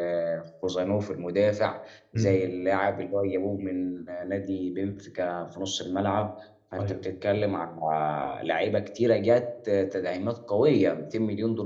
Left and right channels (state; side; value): identical; both; correlation 1.00